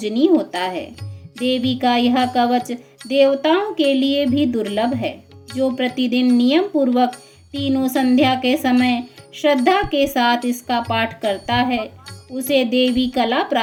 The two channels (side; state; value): both; identical; correlation 1.00